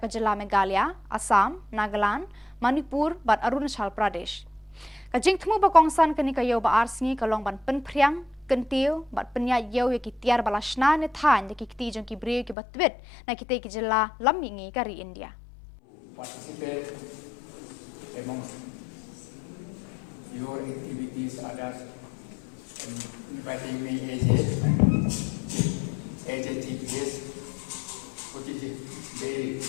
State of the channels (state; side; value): drops out; right; at 12.6 s